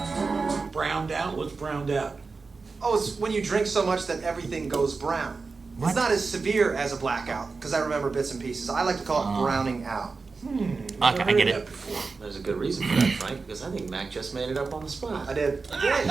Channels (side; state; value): left; quieter; 4.3 dB